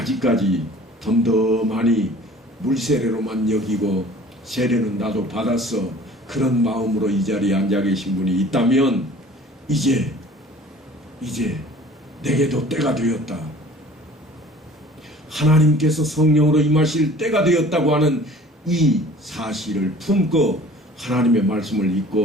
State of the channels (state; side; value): normal; both; correlation 0.48